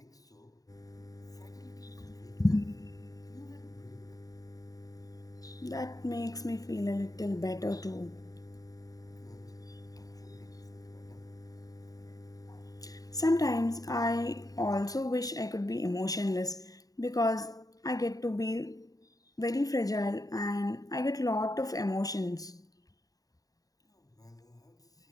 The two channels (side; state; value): right; late; 0.18 ms